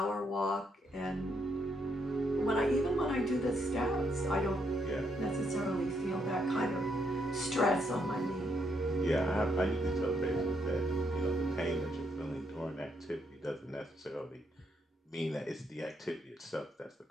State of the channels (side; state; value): both; normal; correlation 0.76